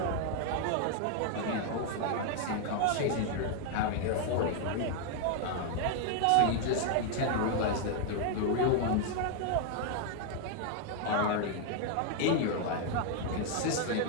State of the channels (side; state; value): both; different; correlation 0.00